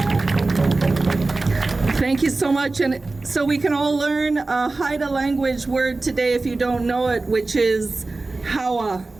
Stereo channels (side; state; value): left; quieter; 3.4 dB